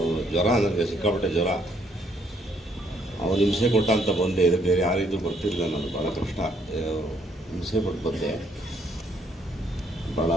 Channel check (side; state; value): both; normal; correlation 0.69